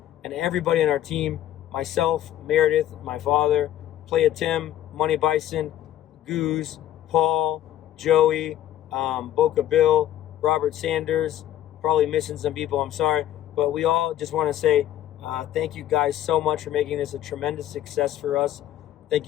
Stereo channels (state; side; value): quieter; right; 12.2 dB